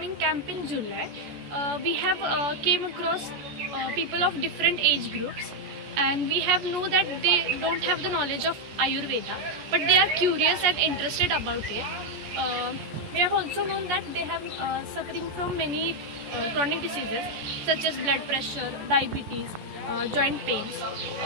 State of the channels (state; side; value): late; left; 14 ms